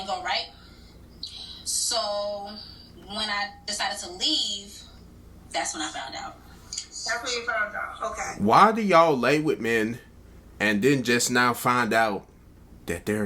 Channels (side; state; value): both; identical; correlation 1.00